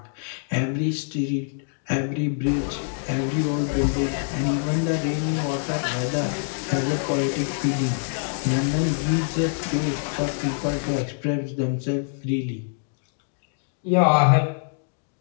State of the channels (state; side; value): silent; right; digital silence